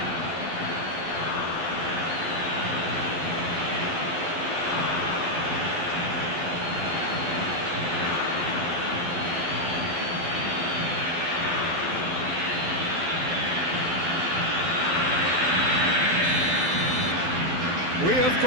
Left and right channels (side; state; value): left; late; 12 ms